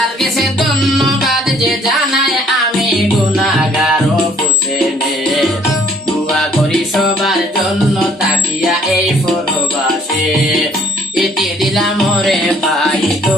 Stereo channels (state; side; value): normal; both; correlation 0.59